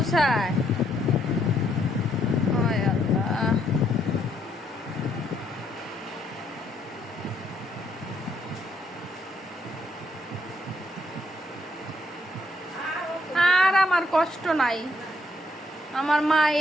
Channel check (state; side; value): normal; both; correlation 0.71